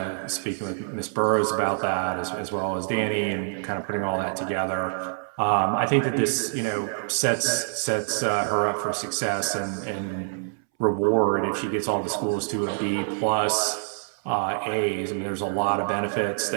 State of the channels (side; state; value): left; silent; 61 dB below the other